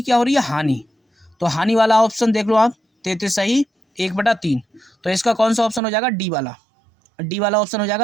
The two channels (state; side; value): drops out; left; at 5.8 s